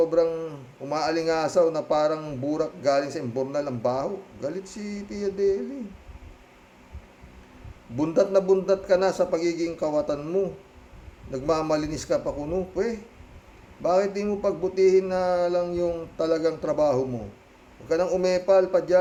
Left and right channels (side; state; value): both; identical; correlation 1.00